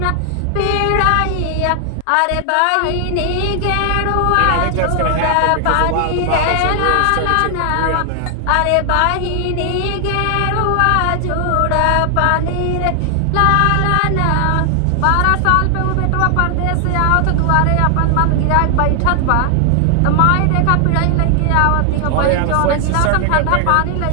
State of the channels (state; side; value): different; both; correlation 0.00